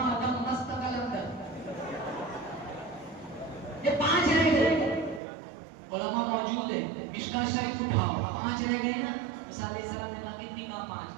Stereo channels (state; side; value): drops out; left; at 5.2 s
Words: دم مست قلندر. یہ 5 رہ گئے. علماء موجود ہیں, مشکاہ شریف اٹھاؤ, 5 رہ گئے نا. موسیٰ علیہ السلام نے کہا کتنی کہا 5.